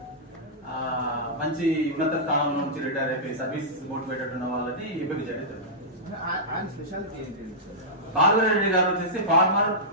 మంచి ఉన్నత స్థానంలో నుంచి రిటైర్ అయిపోయి సర్వీస్ మోటివేటెడ్ ఉన్న వాళ్ళని ఎంపిక చేయడం జరుగుతుంది. బాలవీరారెడ్డి గారు వచ్చేసి former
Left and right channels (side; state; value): both; normal; correlation -0.13